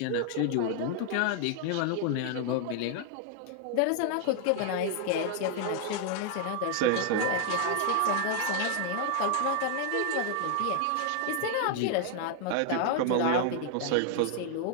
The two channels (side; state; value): both; different; correlation 0.00